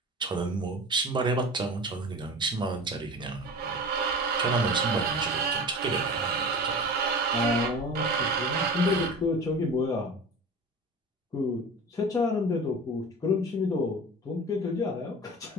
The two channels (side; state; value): both; normal; correlation 0.35